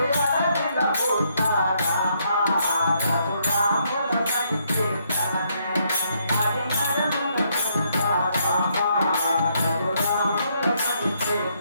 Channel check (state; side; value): inverted; both; correlation -0.73